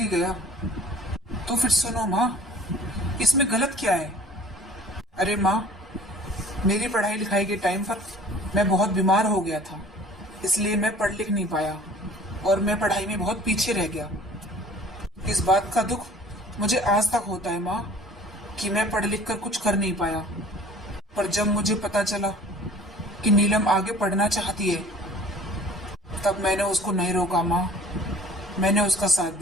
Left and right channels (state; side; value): normal; both; correlation 0.48